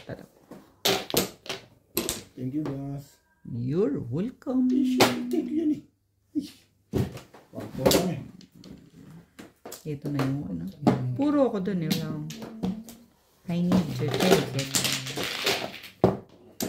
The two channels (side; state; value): both; identical; correlation 1.00